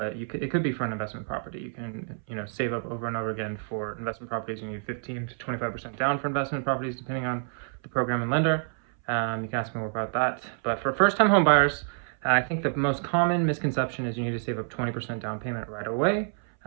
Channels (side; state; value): left; silent; 59 dB below the other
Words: it could be for an investment property. You can, save up over and over again for investment properties. You need 15 to 25% down for investment properties, depending on the program and lender. You can ask me more about that. But for first-time home buyers, I think the most common misconception is you need to save up 20% down payment right away.